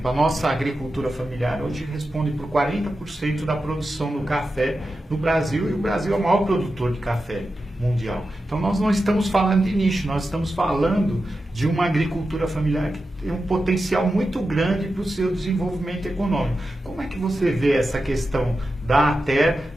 a nossa agricultura familiar hoje responde por 40% da produção do café no Brasil, e o Brasil é o maior produtor de café mundial. Então nós não estamos falando de nicho, nós estamos falando de uma agricultura familiar que tem um potencial muito grande para o seu desenvolvimento econômico. Como é que você vê essa questão da ATER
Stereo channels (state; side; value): normal; both; correlation 0.91